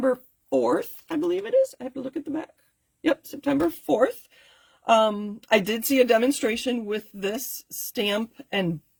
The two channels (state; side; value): identical; both; correlation 1.00